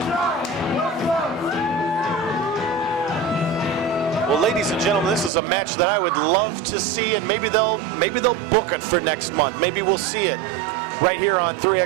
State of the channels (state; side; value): drops out; left; at 5.3 s